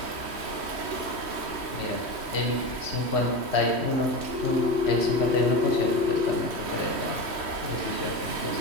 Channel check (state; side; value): late; left; 3.1 ms